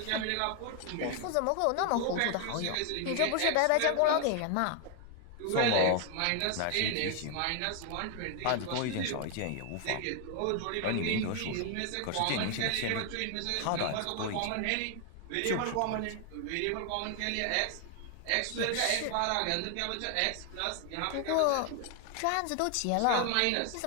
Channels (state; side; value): different; both; correlation 0.00